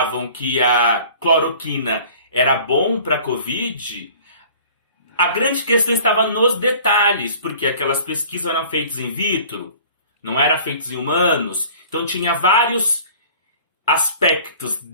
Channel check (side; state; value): both; inverted; correlation -0.48